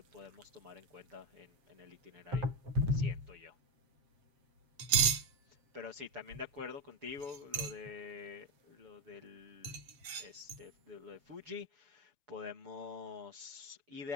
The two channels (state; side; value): late; left; 7.4 ms